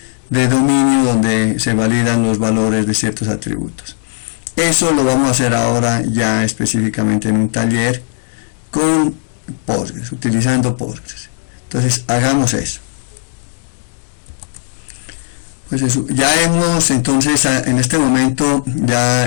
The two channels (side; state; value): right; silent; digital silence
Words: de dominio, donde se validan los valores de ciertos atributos. Eso lo vamos a hacer ahora ya específicamente en un taller con Postgres, utilizando Postgres. Entonces hagamos eso. Pues eso, ya hemos, entonces en este momento